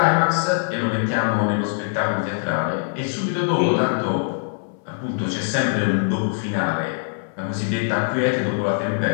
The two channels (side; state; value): right; silent; 60 dB below the other